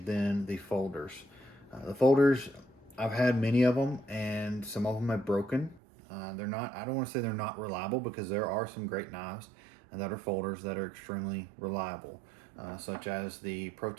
than the folders. The folders, I've had many of them, and some of them have broken. They're not, I don't want to say they're not reliable, because there are some great knives that are folders that are extremely reliable, such as the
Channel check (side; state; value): left; drops out; at 5.8 s